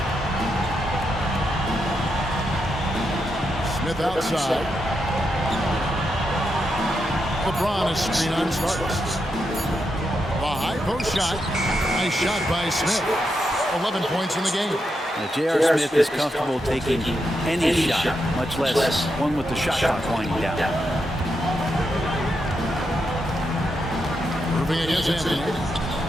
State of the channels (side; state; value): both; normal; correlation 0.84